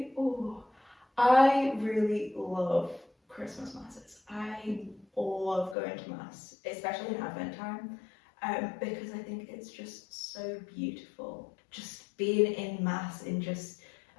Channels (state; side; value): drops out; right; at 5.8 s